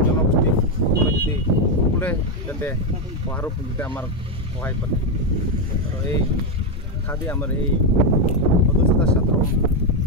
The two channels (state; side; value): normal; both; correlation 0.05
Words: জনগোষ্ঠী সকলোৱে যাতে সহায়ৰ যাতে আমাৰ সহায় কৰে আৰু এই খাদি আমাৰ এই সদস্যতা ছাত্ৰ